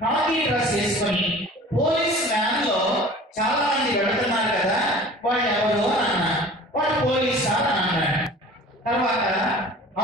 కాకి డ్రెస్ వేసుకొని పోలీస్ వ్యాన్ లో చాలా మంది వెళుతున్నారు కదా, వాళ్ళు ఎవరు అని అన్నా. వాళ్ళు పోలీస్ సార్ అని అన్నాడు. తర్వాత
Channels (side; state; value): both; normal; correlation 0.43